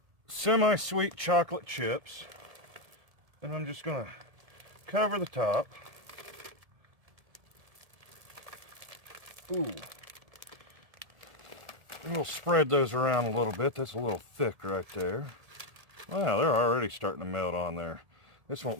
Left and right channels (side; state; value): left; late; 1.7 ms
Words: semi-sweet chocolate chips, and I'm just going to cover the top. Ooh. We'll spread those around a little bit. That's a little thick right there. Wow, they're already starting to melt on there. This